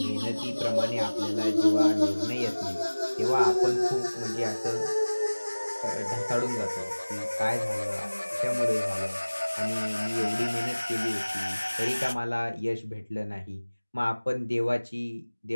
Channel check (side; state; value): both; inverted; correlation -1.00